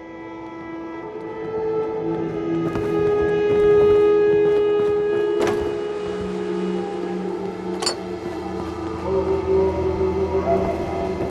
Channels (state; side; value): identical; both; correlation 1.00